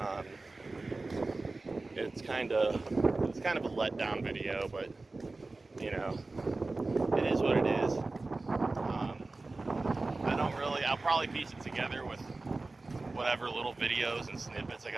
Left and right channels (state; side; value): quieter; left; 3.4 dB